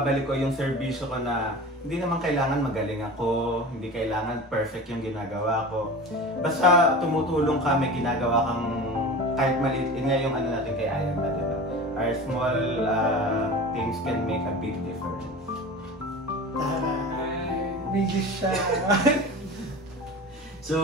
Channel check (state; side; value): normal; both; correlation 0.33